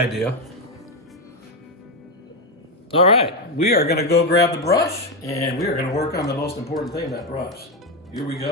All right, we are gonna go grab the brush and we are gonna work on the most important thing, that brush. Here we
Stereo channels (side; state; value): both; normal; correlation 0.08